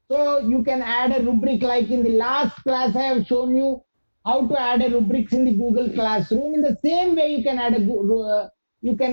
So you can add a rubric, like in the last class I have shown you how to add a rubrics in the Google Classroom. In the same way, you can add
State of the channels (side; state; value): both; inverted; correlation -1.00